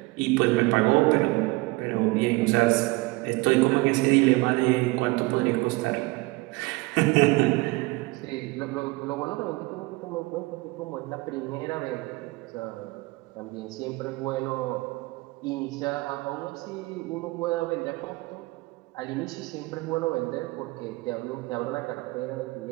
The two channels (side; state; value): left; quieter; 22.8 dB